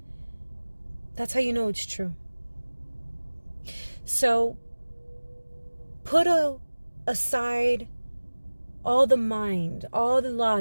That's how you know it's true. So put aside all the mind, all the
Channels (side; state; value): both; inverted; correlation -1.00